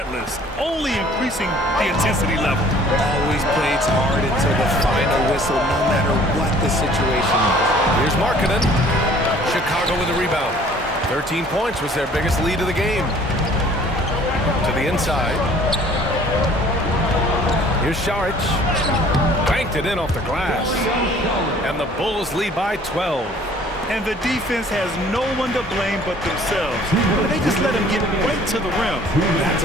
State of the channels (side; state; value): both; normal; correlation 0.54